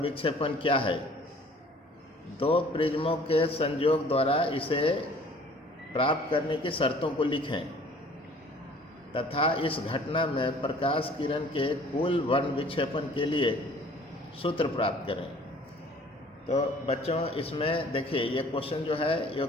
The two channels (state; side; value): normal; both; correlation 0.52